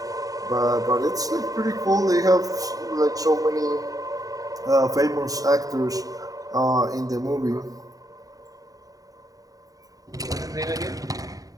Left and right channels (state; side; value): late; left; 0.17 ms